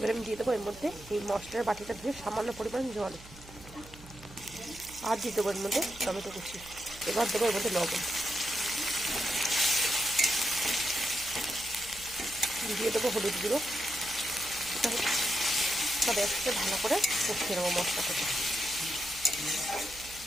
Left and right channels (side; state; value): right; noise; hum, 19 dB below the sound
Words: আমি দিয়ে দেবো এর মধ্যে এই মশলার বাটিটা ধুয়ে সামান্য পরিমাণ জল, আর দিয়ে দেবো এর মধ্যে টমেটো কুচি। এবার দেবো এর মধ্যে লবণ, দিয়ে দেবো হলুদ গুঁড়ো। সব একসাথে ভালো করে কষিয়ে নেবো মশলাটাকে।